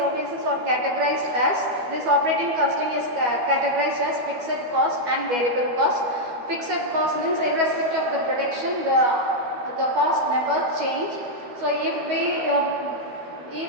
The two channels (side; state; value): left; late; 12 ms